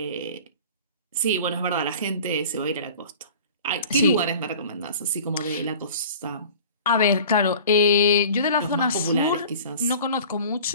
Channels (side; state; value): both; inverted; correlation -0.42